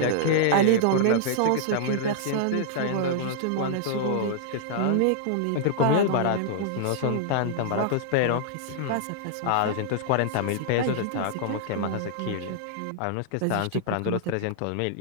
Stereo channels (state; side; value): different; both; correlation -0.01